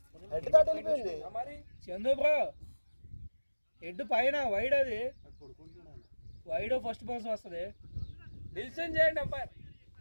హెడ్ దాటి వెళ్ళిపోయింది. మరి చందు బ్రో హెడ్ పైన వైడ్. అది వైడ్ ఫస్ట్ బౌన్స్ వస్తుంది. డిసిషన్ చేయండి అంపైర్.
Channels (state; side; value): inverted; both; correlation -1.00